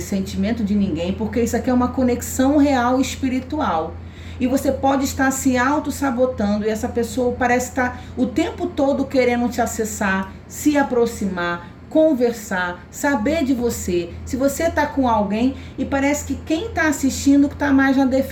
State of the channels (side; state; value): both; identical; correlation 1.00